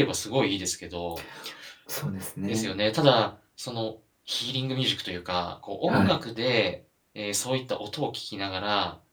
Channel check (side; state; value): both; identical; correlation 1.00